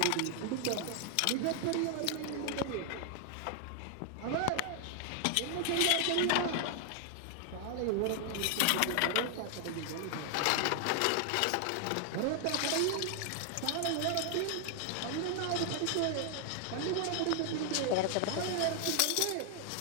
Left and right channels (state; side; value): different; both; correlation 0.00